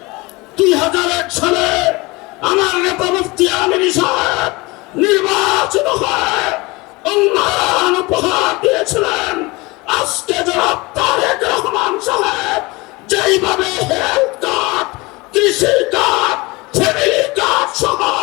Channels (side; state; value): right; quieter; 23.9 dB